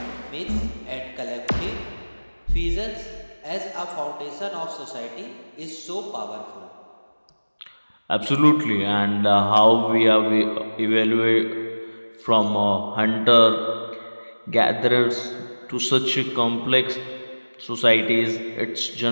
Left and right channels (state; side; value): inverted; both; correlation -1.00